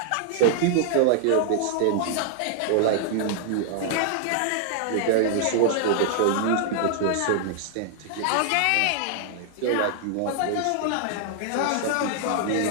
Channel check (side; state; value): both; different; correlation 0.00